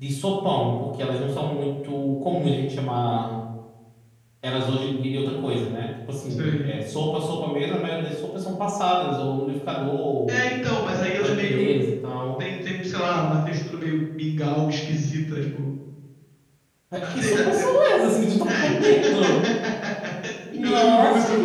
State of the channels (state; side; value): identical; both; correlation 1.00